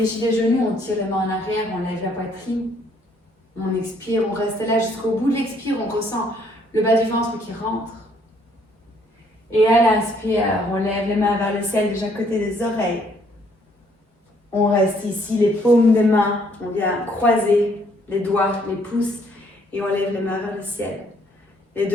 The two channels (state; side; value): normal; both; correlation 0.66